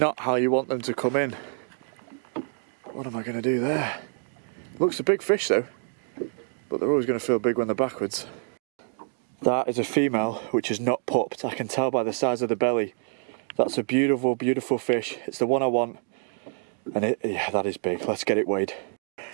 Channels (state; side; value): silent; left; 60 dB below the other